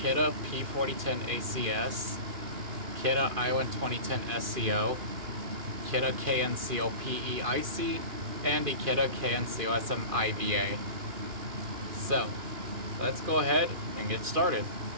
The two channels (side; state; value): left; late; 2.5 ms